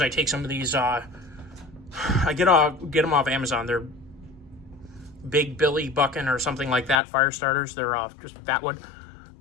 I take some of these, I get them off Amazon. They're Big Billy Buckin or something like that, fire starters. They're just fat wood,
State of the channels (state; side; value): drops out; right; at 7.0 s